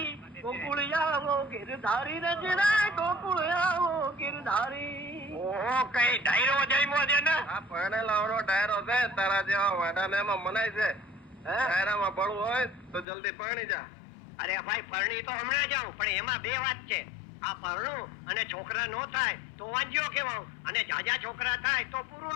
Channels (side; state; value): right; drops out; at 13.1 s